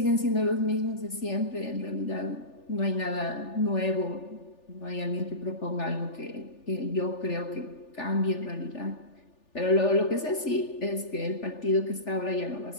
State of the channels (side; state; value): right; late; 3.4 ms